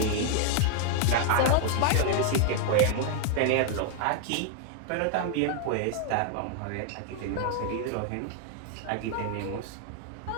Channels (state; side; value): different; both; correlation 0.00